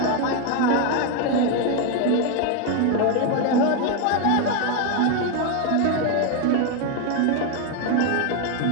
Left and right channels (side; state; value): both; different; correlation 0.01